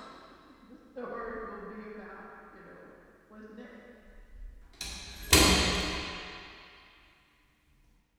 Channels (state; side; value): identical; both; correlation 1.00